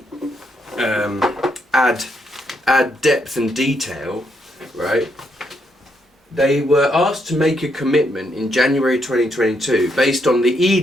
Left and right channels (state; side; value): normal; both; correlation 0.77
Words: add depth and detail, right? They were asked to make a commitment in January 2022 based on the